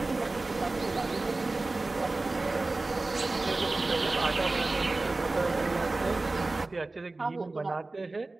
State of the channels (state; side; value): quieter; left; 3.2 dB